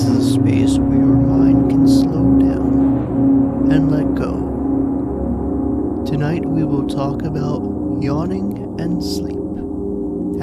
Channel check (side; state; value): both; identical; correlation 1.00